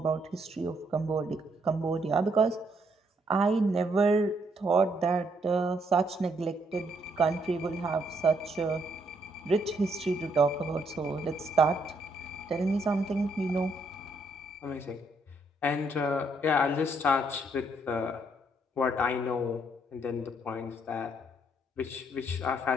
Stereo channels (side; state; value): both; normal; correlation 0.72